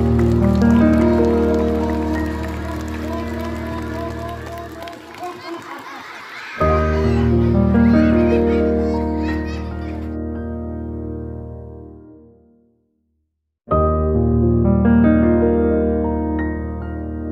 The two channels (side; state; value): both; identical; correlation 1.00